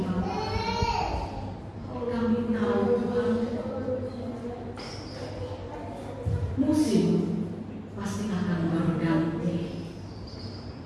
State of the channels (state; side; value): identical; both; correlation 1.00